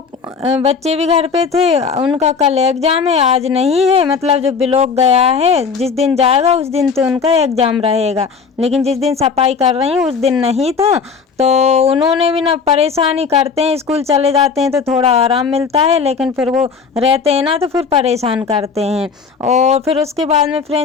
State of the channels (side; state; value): right; quieter; 5.6 dB